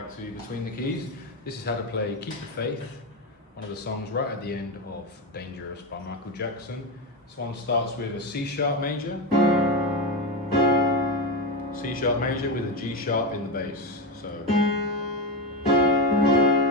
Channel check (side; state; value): both; normal; correlation 0.14